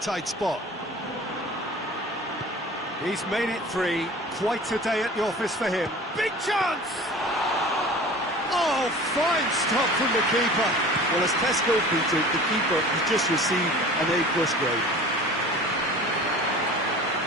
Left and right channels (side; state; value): both; normal; correlation 0.41